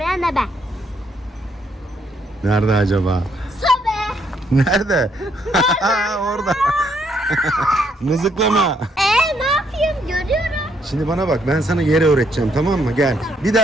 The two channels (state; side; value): normal; both; correlation 0.72